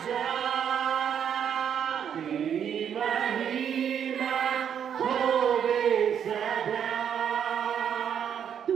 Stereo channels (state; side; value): quieter; left; 8.5 dB